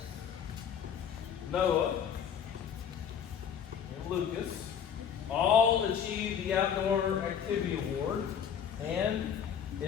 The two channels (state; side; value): quieter; right; 8.0 dB